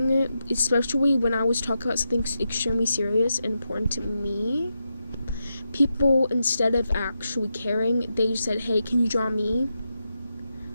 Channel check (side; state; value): both; inverted; correlation -0.87